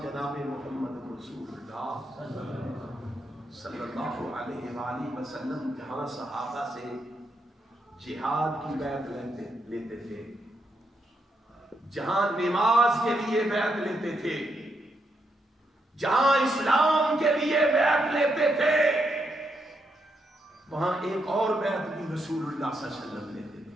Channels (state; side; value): normal; both; correlation 0.80